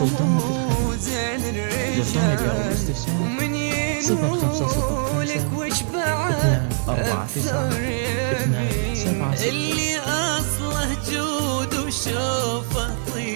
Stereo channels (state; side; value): silent; left; 64 dB below the other